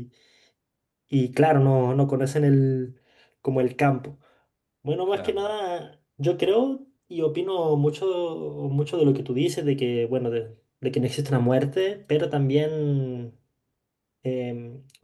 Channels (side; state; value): both; identical; correlation 1.00